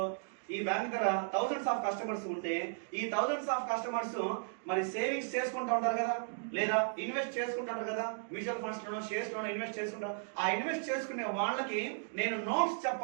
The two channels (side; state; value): left; silent; digital silence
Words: ఈ బ్యాంక్ దగ్గర థౌసండ్స్ ఆఫ్ కస్టమర్స్ ఉంటే ఈ థౌసండ్స్ ఆఫ్ కస్టమర్స్ మరి సేవింగ్స్ చేసుకుంటూ ఉంటారు కదా, లేదా ఇన్వెస్ట్ చేసుకుంటారు కదా, మ్యూచువల్ ఫండ్స్ లోనో షేర్స్ లోనో ఇన్వెస్ట్ చేసుకుంటారు. ఆ ఇన్వెస్ట్ చేసుకునే వాళ్ళకి నేను నోట్స్